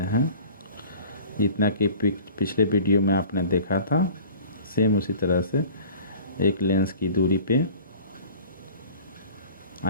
हैं। जितना कि पिछले वीडियो में आपने देखा था, सेम उसी तरह से एक लेंस की दूरी पे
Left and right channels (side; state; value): both; inverted; correlation -0.44